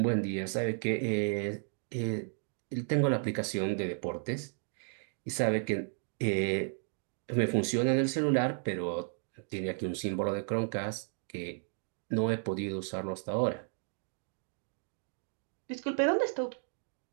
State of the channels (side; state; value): left; silent; 55 dB below the other